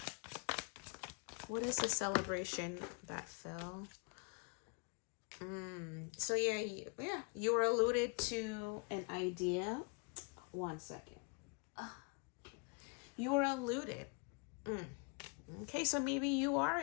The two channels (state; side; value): quieter; right; 33.5 dB